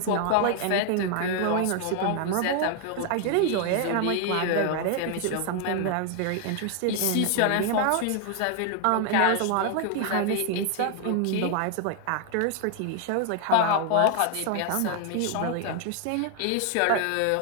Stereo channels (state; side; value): different; both; correlation 0.00